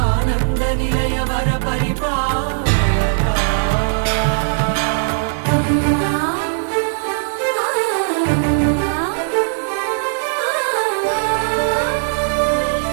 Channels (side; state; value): left; silent; digital silence